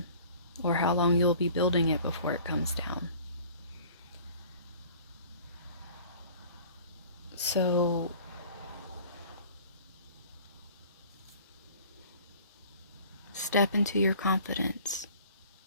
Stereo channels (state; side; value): inverted; both; correlation -0.49